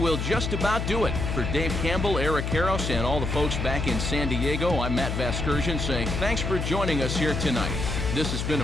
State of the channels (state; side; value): noise; left; hum, 2 dB below the sound